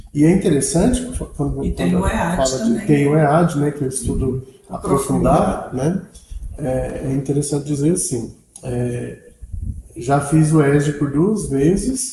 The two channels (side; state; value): both; identical; correlation 1.00